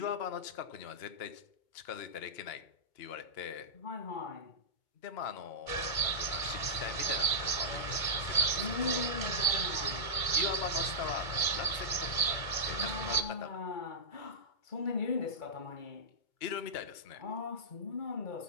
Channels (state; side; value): late; right; 2.2 ms